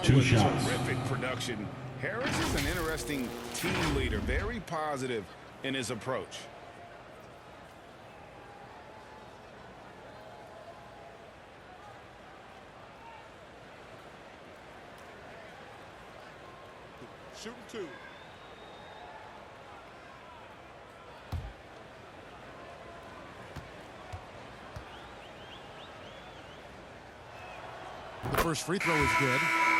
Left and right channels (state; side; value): identical; both; correlation 1.00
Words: 2 with shots. terrific production, Harris is an interesting team leader, very positive in his approach. Shooting 2. The first free throw is good.